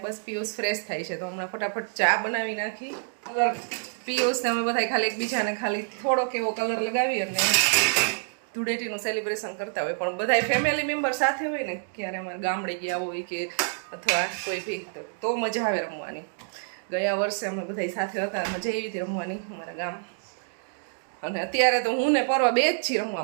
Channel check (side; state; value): left; silent; digital silence